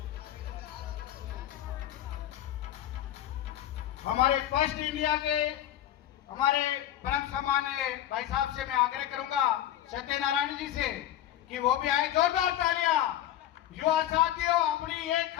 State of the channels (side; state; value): right; quieter; 12.3 dB